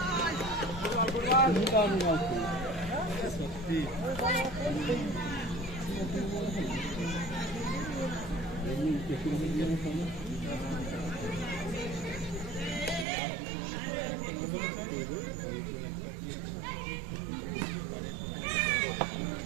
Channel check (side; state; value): left; drops out; at 13.1 s